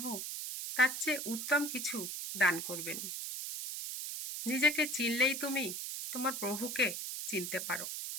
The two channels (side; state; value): right; noise; hiss, 5 dB below the sound